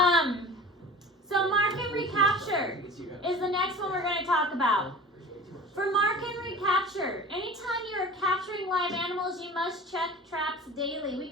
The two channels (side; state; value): both; normal; correlation 0.38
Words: So mark and recapture is the next one we're going to talk about. For mark and recapture, anytime you're capturing live animals, you must check traps daily. We